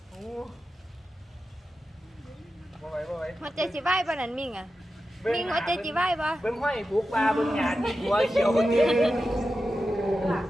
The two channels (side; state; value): both; normal; correlation 0.91